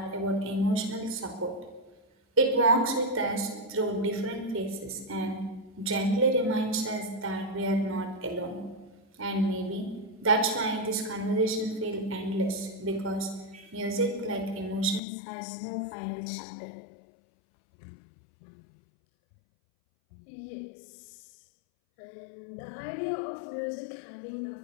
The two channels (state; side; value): drops out; right; at 15.0 s